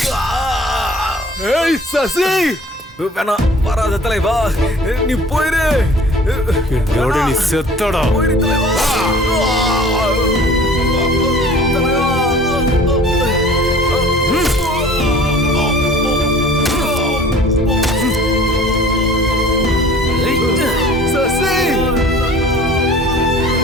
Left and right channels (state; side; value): normal; both; correlation 0.48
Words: ஏய் சசி, வேணாம், வராத தலைவா, நீ போயிரு. என்னோட நீ செத்தடா. போயிரு தலைவா.